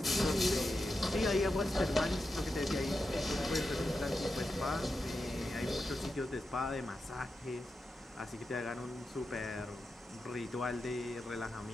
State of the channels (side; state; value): both; normal; correlation 0.89